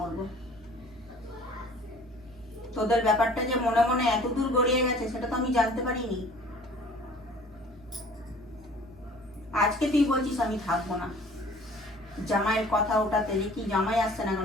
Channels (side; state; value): right; noise; hum, 23 dB below the sound